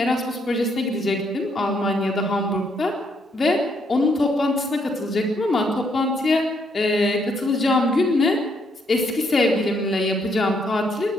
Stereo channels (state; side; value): normal; both; correlation 0.73